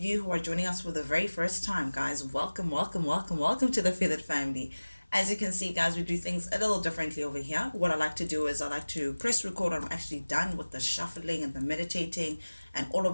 who are joining us for the very first time, guys, welcome, welcome, welcome, welcome to the Feathered family. As you can see, guys, we do things a little differently over here. What I like to do is I like to press record when I'm actually done with the shuffling and the meditating and all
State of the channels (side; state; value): both; inverted; correlation -1.00